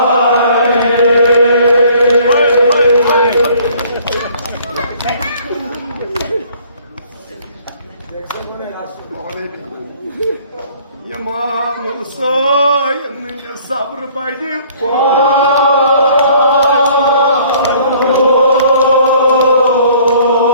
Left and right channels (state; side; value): inverted; both; correlation -0.56